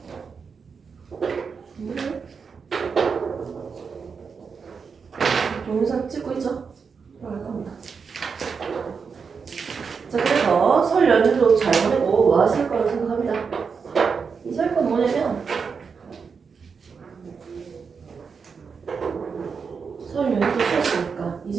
동영상 찍고 있죠? 들어갈 겁니다. 자, 그래서 설 연휴도 잘 보내고 뭐 하실 거라고 생각합니다. 이 설 건 뭐냐면 설 연휴도 쉬었으니까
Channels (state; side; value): quieter; left; 5.7 dB